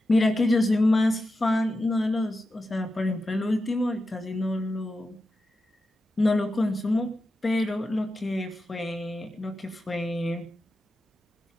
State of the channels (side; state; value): both; normal; correlation 0.90